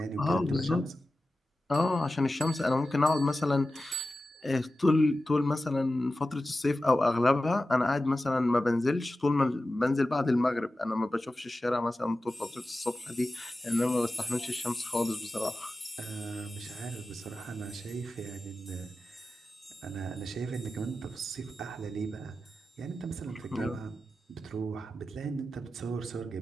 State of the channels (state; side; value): normal; both; correlation 0.94